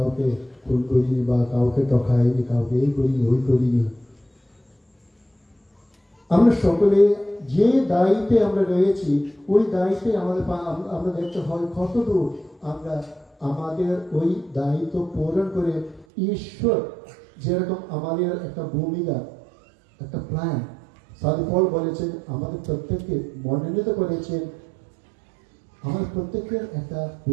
খুন করিনি বা কাউকে টকাইনি, কাউকে এই করিনি ওই করিনি। আমরা সকলে যে দায়িত্বে আমরা রয়েছি ওই দায়িত্বে আমরা দেখতে হয় কতদূর আমরা আমাদের ওই দায়িত্ব পূরণ করে ঈশ্বর যেরকম আমাদের একটা ভূমিকা, একটা প্ল্যান সাধু পল বলেছেন, আমাদের প্রত্যেককে মনোনীত করেছেন। আমাদের প্রত্যেকের একটা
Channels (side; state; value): left; drops out; at 16.1 s